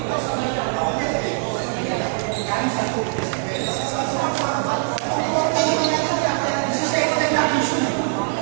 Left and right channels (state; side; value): silent; left; 64 dB below the other